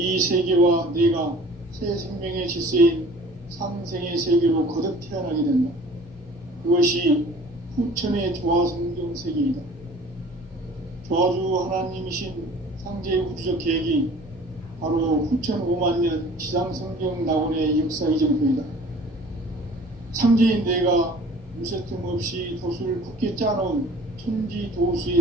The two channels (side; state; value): both; normal; correlation 0.48